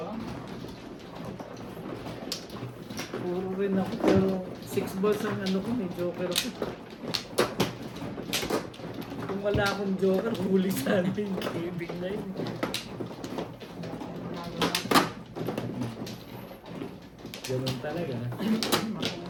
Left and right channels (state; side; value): identical; both; correlation 1.00